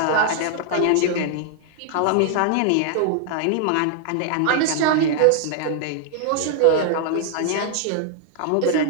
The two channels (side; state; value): both; different; correlation 0.00